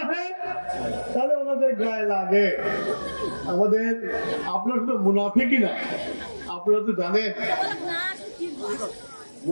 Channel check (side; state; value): both; inverted; correlation -1.00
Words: তাহলে ওনাদের গায়ে লাগে। আমাদের আপনারা শুধু মুনাফিকই না, আপনারা তো জানেন